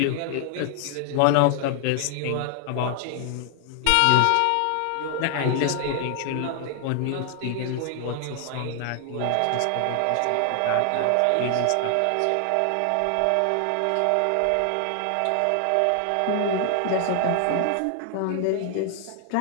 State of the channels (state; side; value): different; both; correlation 0.00